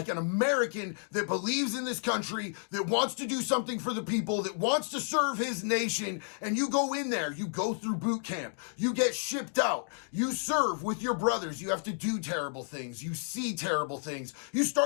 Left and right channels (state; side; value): silent; right; 57 dB below the other